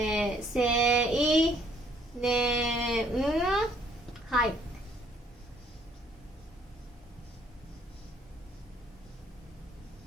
年、はい。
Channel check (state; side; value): normal; both; correlation 0.63